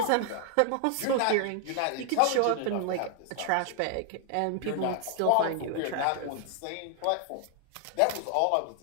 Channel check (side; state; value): both; different; correlation 0.00